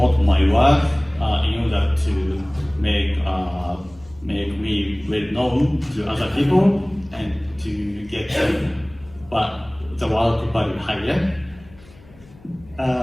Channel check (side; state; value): left; noise; hum, 24 dB below the sound